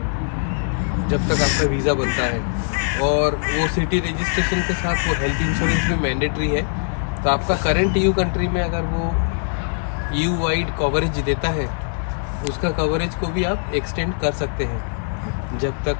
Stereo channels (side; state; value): right; silent; digital silence